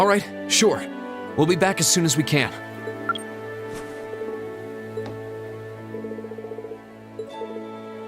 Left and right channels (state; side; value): identical; both; correlation 1.00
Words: right, sure. We'll be back as soon as we can.